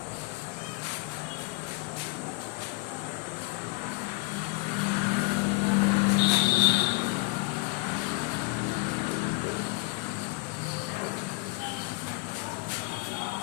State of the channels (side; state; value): right; quieter; 25.3 dB